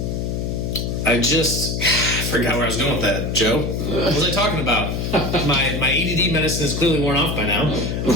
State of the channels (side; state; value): left; noise; hum, 2 dB below the sound